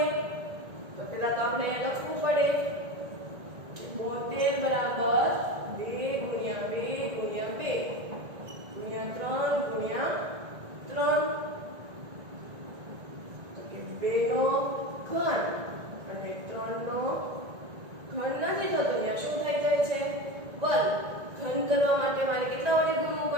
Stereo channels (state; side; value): late; left; 1.7 ms